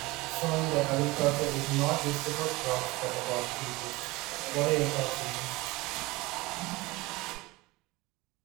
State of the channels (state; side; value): quieter; left; 21.7 dB